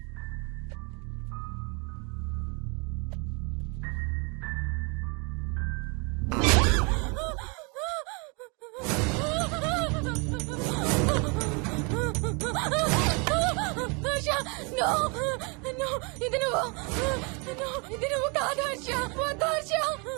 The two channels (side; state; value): left; quieter; 32.4 dB